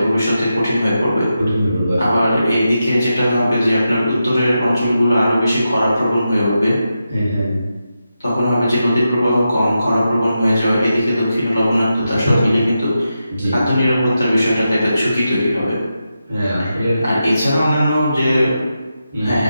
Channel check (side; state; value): both; inverted; correlation -0.88